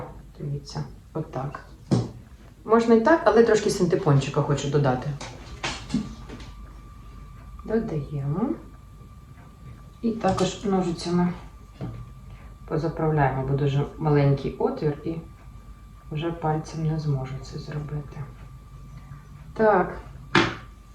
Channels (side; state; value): both; identical; correlation 1.00